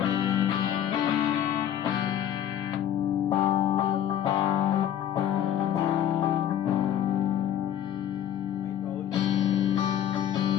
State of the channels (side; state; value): right; quieter; 10.4 dB